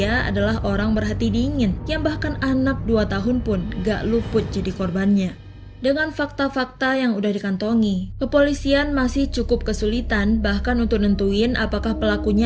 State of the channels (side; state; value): both; identical; correlation 1.00